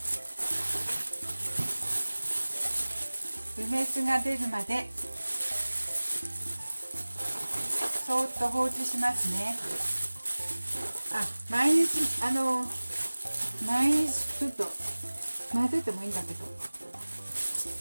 梅酢が出るまでそーっと放置しますね。毎日ちょっと混ぜてもいいんだけど、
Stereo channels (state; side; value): inverted; both; correlation -1.00